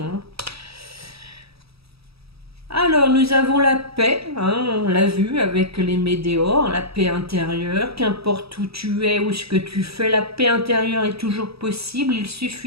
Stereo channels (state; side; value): late; left; 0.77 ms